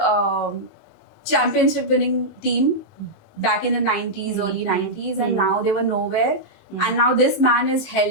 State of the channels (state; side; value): normal; both; correlation -0.08